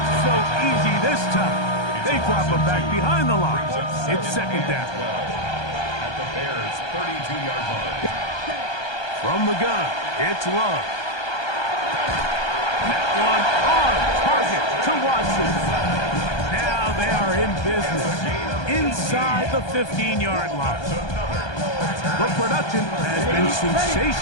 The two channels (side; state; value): right; late; 1.2 ms